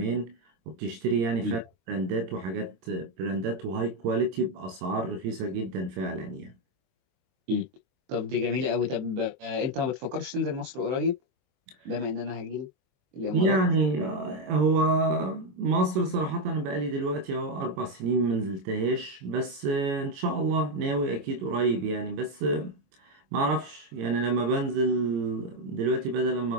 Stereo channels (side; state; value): left; late; 22 ms